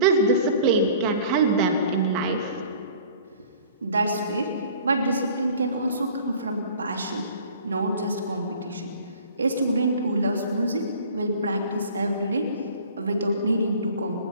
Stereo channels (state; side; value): inverted; both; correlation -0.47